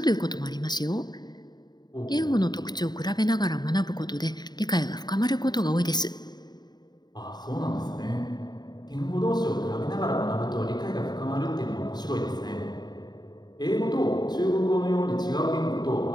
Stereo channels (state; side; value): late; right; 0.20 ms